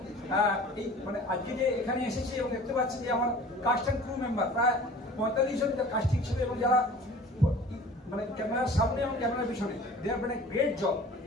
এই মানে আজকে যে এখানে এসেছি এবং দেখতে পাচ্ছি যে আমার কাস্ট অ্যান্ড ক্রু মেম্বার প্রায় 45 জন কাস্টিং ছিল, এবং যারা মানে ক্যামেরার সামনে এবং ক্যামেরার পিছনে, they have done a great job,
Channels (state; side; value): normal; both; correlation 0.45